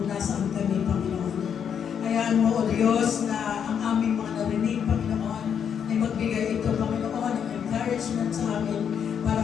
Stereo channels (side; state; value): right; quieter; 7.9 dB